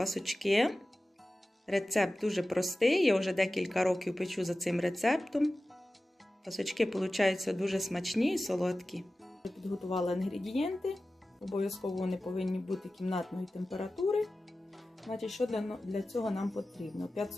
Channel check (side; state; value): both; normal; correlation 0.95